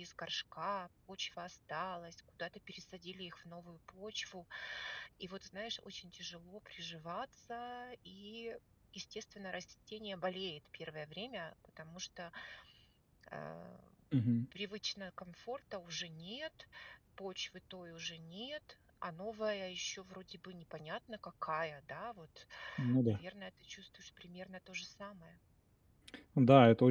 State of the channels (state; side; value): identical; both; correlation 1.00